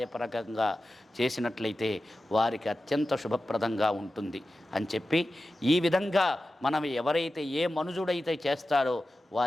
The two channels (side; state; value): both; normal; correlation 0.93